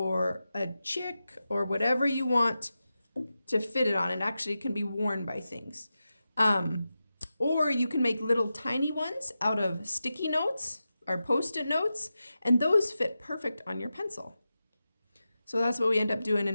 a chick or whatever you want to fit it on. It actually can be worn by things. Or you can make little tiny ones out of sticky notes or Post-it notes, and those fit perfect on your pencil. So that's what we end up doing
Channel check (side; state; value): both; inverted; correlation -0.92